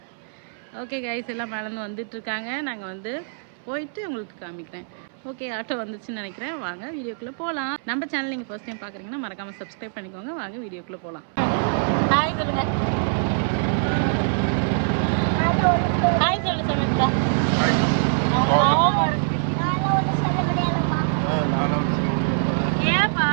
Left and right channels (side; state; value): left; silent; 61 dB below the other